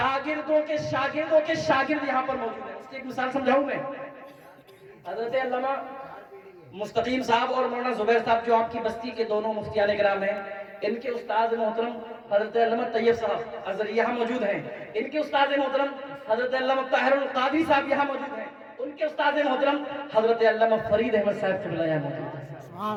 کے شاگرد یہاں پر موجود ہیں۔ اس کی ایک مثال سمجھاؤں میں، حضرت علامہ مستقیم صاحب اور مولانا زبیر صاحب جو آپ کی بستی کے دونوں مفتیان کرام ہیں، ان کے استاد محترم حضرت علامہ طیب صاحب ازہری یہاں موجود ہیں، ان کے استاد محترم حضرت علامہ طاہر القادری صاحب یہاں موجود ہیں، ان کے استاد محترم حضرت علامہ فرید احمد صاحب قبلہ یہاں موجود ہیں۔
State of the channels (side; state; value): both; identical; correlation 1.00